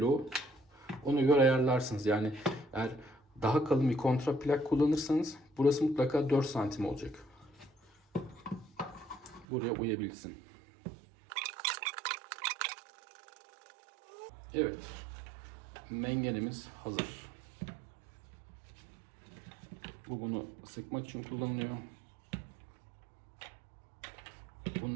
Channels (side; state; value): left; drops out; at 9.5 s